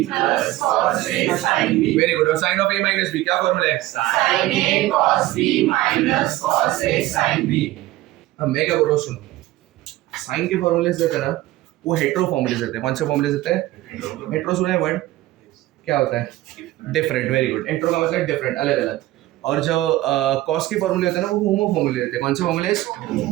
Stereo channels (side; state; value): left; quieter; 16.5 dB